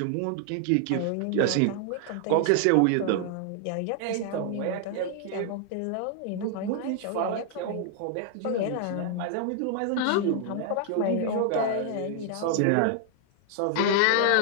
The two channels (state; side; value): different; both; correlation 0.00